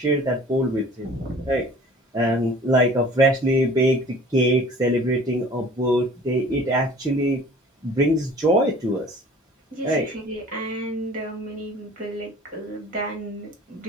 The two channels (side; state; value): both; normal; correlation 0.48